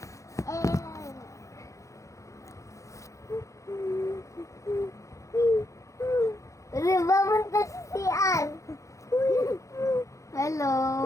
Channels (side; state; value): right; late; 0.15 ms